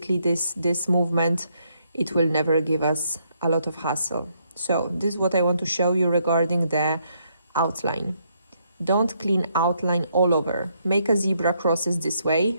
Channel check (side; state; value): both; inverted; correlation -0.74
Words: this movement, it will never give us a lot of hassle. So this is what I want to show you regarding the outline. Don't clean outline all over. Make a zebra crosses this